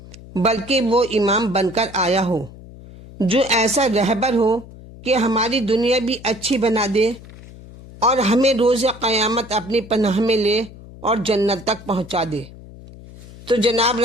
بلکہ وہ امام بن کر آیا ہو، جو ایسا رہبر ہو کہ ہماری دنیا بھی اچھی بنا دے اور ہمیں روز قیامت اپنی پناہ میں لے اور جنت تک پہنچا دے۔ تو جناب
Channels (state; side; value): noise; left; hum, 18 dB below the sound